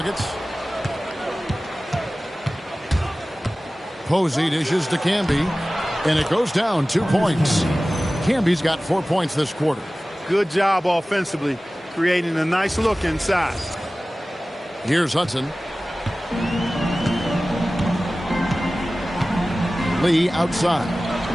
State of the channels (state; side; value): normal; both; correlation 0.97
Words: Posey dishes to Camby, and it goes down 2 points. Camby's got 4 points this quarter. Good job offensively, creating a nice look inside. Here's Hudson. Lee outside.